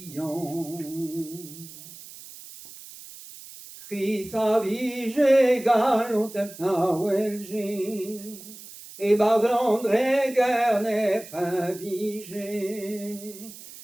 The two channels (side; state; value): right; noise; hiss, 16 dB below the sound